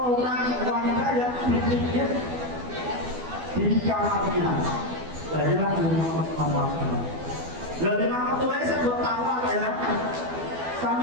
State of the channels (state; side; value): late; left; 12 ms